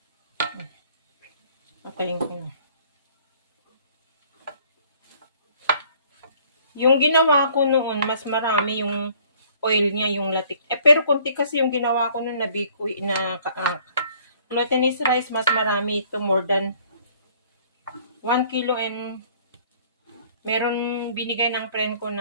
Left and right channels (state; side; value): inverted; both; correlation -0.58